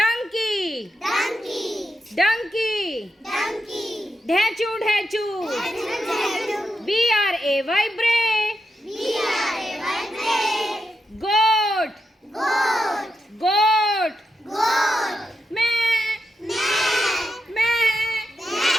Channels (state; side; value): normal; both; correlation 0.86